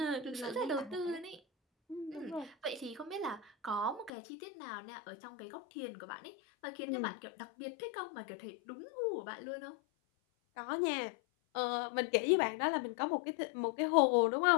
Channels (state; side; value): drops out; right; at 4.1 s